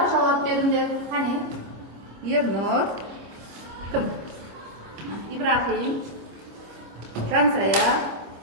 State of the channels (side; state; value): left; late; 25 ms